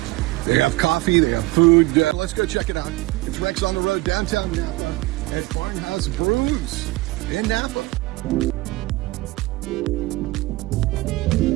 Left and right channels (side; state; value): left; quieter; 20.5 dB